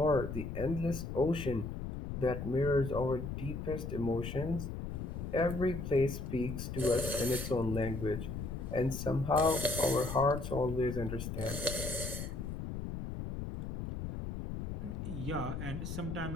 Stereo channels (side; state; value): left; noise; rumble, 5 dB below the sound